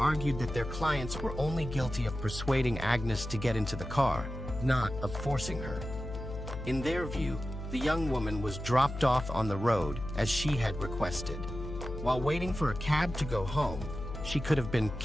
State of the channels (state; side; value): noise; left; hum, 8 dB below the sound